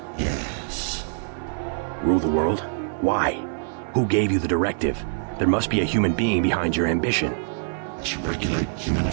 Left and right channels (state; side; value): silent; left; digital silence